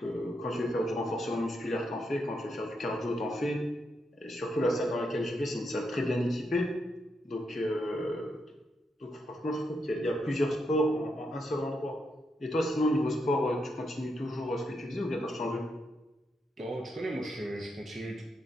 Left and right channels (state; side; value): normal; both; correlation 0.81